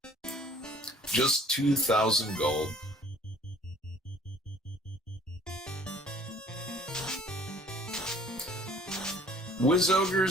Just 2,000 gold. Wiz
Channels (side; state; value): both; normal; correlation 0.54